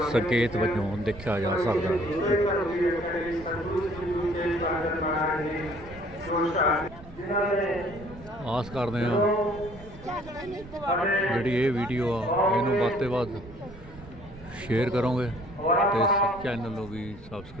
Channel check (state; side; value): noise; right; rumble, 18 dB below the sound